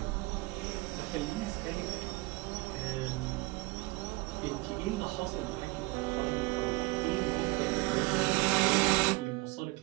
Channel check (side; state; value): left; quieter; 23.1 dB